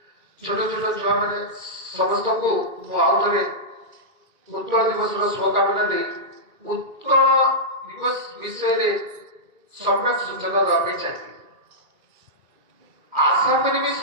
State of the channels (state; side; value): late; left; 1.9 ms